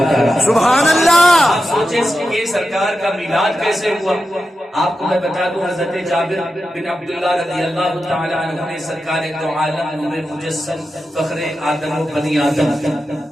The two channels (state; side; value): normal; both; correlation 0.90